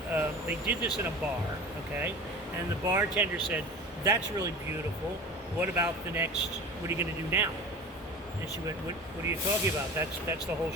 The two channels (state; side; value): normal; both; correlation 0.35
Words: did this in a bar, okay? And the bartender said, "That's really beautiful. What about the next? What are you going to do now?" And she went, "What are you talking about? That's the whole